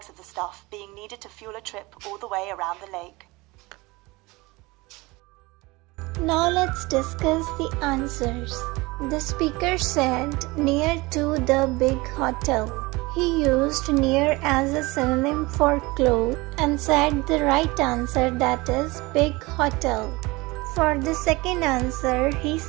of the stuff being needed to fuel a trip all the way around the lake. Now let's discuss the answers. The speaker said near to the big hotel. He used near as a synonym for close and said the right answer, that is big hotel. For the second answer, he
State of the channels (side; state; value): left; quieter; 22.9 dB